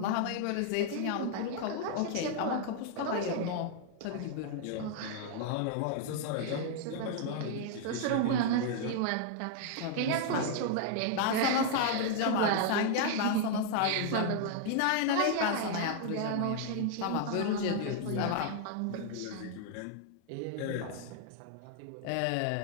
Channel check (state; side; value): different; both; correlation 0.00